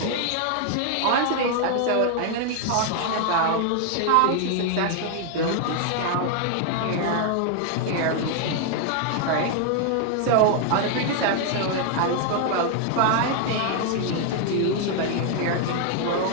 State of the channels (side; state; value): both; different; correlation 0.00